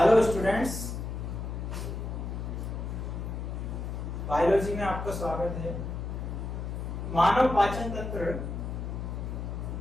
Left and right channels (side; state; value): left; noise; hum, 5 dB below the sound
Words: स्टूडेंट्स, बायोलॉजी में आपका स्वागत है। मानव पाचन तंत्र